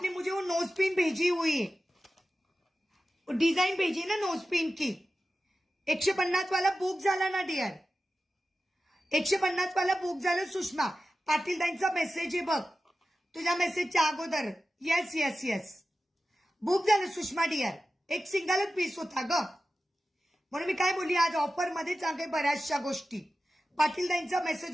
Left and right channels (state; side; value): normal; both; correlation 0.94